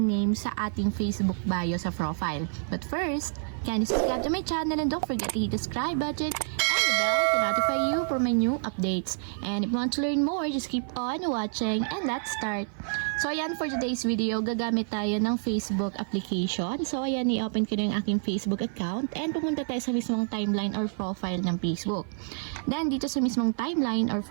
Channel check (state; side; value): silent; left; 55 dB below the other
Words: name sa ating Facebook bio sa profile. But first, can you subscribe to my channel and don't forget to hit the subscribe button and the bell to notify you for my new updates. And if you want to learn more, just keep on watching and let's start! So ayan, for today's video, gagamit tayo ng Facebook application. So ayan, i-open ko na yung aking Facebook account and pumunta tayo sa mismong timeline or profile ng Facebook. Then dito sa mismong timeline or